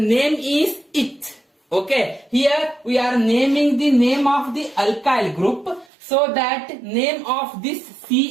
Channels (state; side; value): drops out; left; at 5.9 s